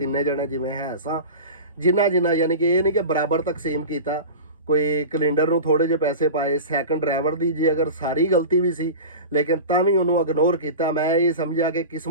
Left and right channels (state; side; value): inverted; both; correlation -0.31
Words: ਜਣੇ ਜਿਵੇਂ ਹੈ ਸਾਂ, ਜਿੰਨਾ ਯਾਨੀ ਕਿ ਇਹ ਨਹੀਂ ਕਿ ਬਰਾਬਰ ਤਕਸੀਮ ਕੀਤਾ। ਕੋਈ ਕੈਲੰਡਰ ਨੂੰ ਥੋੜੇ ਜਿਹੇ ਪੈਸੇ ਪਾਏ, ਸੈਕੰਡ ਡਰਾਈਵਰ ਦੀ ਜੇ ਅਗਰ ਸਾਰੀ ਗਲਤੀ ਵੀ ਸੀ ਲੇਕਿਨ ਤਾਂ ਵੀ ਉਹਨੂੰ ਇਗਨੋਰ ਕੀਤਾ। ਮੈਂ ਇਹ ਸਮਝਿਆ ਕਿ